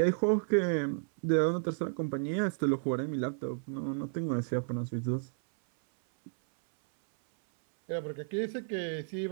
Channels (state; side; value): silent; left; 56 dB below the other